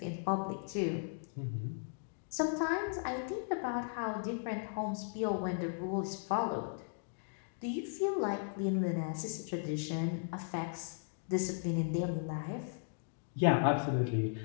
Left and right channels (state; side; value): silent; right; digital silence